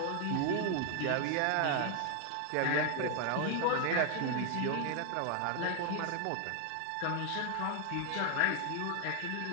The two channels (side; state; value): both; different; correlation 0.00